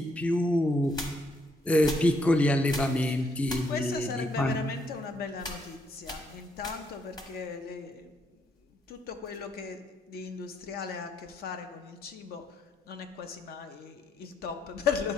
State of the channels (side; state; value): both; normal; correlation 0.74